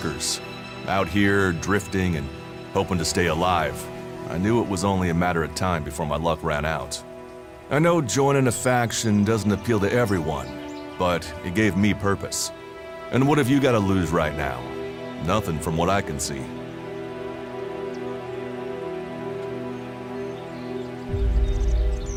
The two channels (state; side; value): identical; both; correlation 1.00